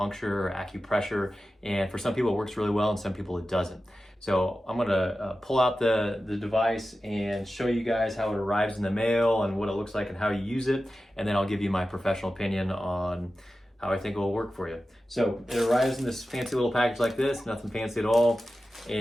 or acupressure. And for some people it works really well and some people it doesn't. So I'm gonna pull out the device and show you guys how it arrives in the mail and what it looks like and how you use it. And then I'll give you my professional opinion on how I think it will work for you. So it arrives in this fancy little package like this, nothing fancy at all.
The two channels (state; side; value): normal; both; correlation 0.94